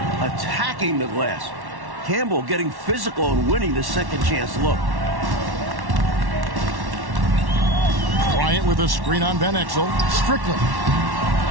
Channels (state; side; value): late; left; 1.1 ms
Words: Attacking the glass. Campbell getting physical and winning the second chance look. Bryant with a screen on Van Exel. Strickland.